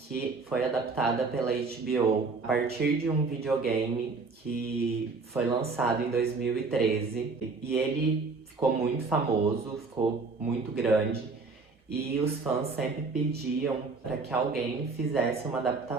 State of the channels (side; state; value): left; quieter; 4.1 dB